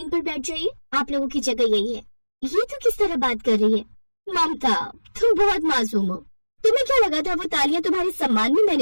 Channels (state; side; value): inverted; both; correlation -1.00